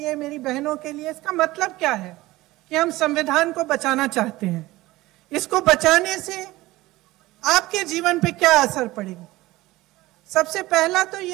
मेरी बहनों के लिए इसका मतलब क्या है कि हम संविधान को बचाना चाहते हैं? इसको बचाने से आपके जीवन पे क्या असर पड़ेगा? सबसे पहला तो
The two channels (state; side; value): quieter; left; 18.5 dB